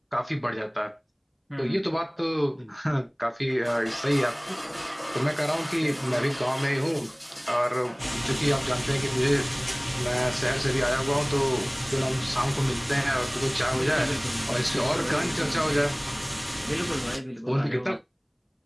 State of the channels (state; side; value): identical; both; correlation 1.00